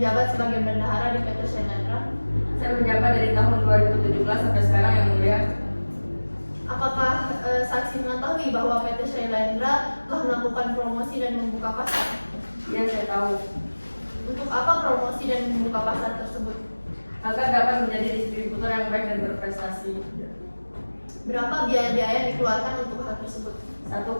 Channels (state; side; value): inverted; both; correlation -1.00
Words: sebagai bendahara di PT Shailendra? Saya menjabat dari tahun 2017 sampai sekarang, yang mulia. Apakah saksi mengetahui bahwa PT Shailendra telah melakukan promosi dan membuka pasar? Ya, saya tahu. Untuk apa promosi dan membuka pasar tersebut? Agar dapat menjadi distributor yang baik dan berprestasi. Berapa biaya-biaya yang dikeluarkan untuk hal tersebut?